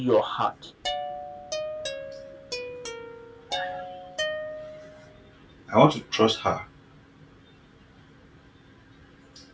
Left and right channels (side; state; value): both; identical; correlation 1.00